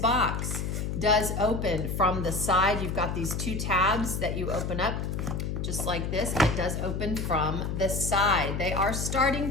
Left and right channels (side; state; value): left; noise; hum, 2 dB below the sound